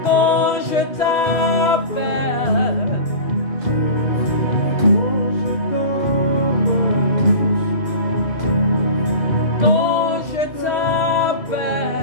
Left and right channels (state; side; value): late; right; 3.2 ms